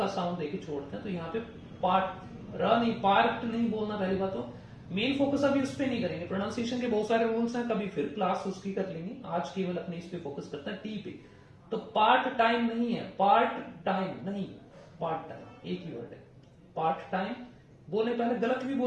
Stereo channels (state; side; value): identical; both; correlation 1.00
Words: साउंड देके छोड़ते हैं। तो यहाँ पे पार्ट, र नहीं, पार्ट नहीं बोलना पहली बात। तो मेन फोकस अभी उस पर नहीं करेंगे, प्रोनाउंसिएशन के बहुत सारे रूल्स हैं, कभी फिर क्लास उसकी कर लेंगे। आज केवल अपने इस पे फोकस करते हैं, टी पे। तो पार्ट टाइम नहीं है, पार्ट टाइम नहीं, पार्ट टाइम एक ही वर्ड है। पार्ट टाइम बोले, पहले गलत भी